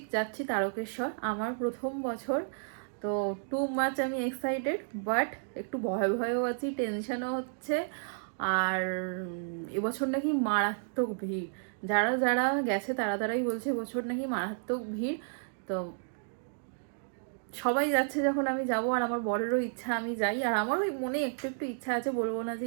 যাচ্ছি তারকেশ্বর, আমার প্রথম বছর। তো টু মাচ আমি এক্সাইটেড, বাট একটু ভয় ভয়ও আছি, টেনশনও হচ্ছে। আর এবছর নাকি মারাত্মক ভিড়। যারা যারা গেছে তারা তারাই বলছে এবছর নাকি মারাত্মক ভিড়। তো সবাই যাচ্ছে যখন আমি যাব, আর আমার বরেরও ইচ্ছা আমি যাই, আর আমারও মনে একটু একটু ইচ্ছা আছে, বলবো না যে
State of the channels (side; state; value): left; silent; digital silence